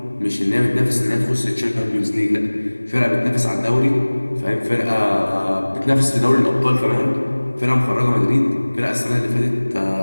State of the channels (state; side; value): inverted; both; correlation -1.00